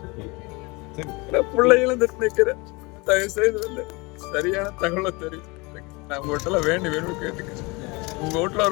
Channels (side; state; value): right; quieter; 26.2 dB